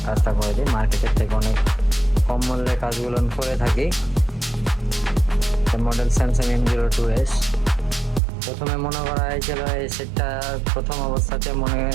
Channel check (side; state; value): left; drops out; at 8.2 s